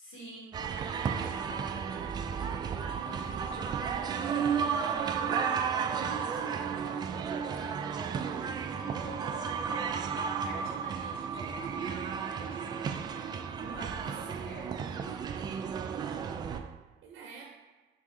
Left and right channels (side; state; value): left; quieter; 6.3 dB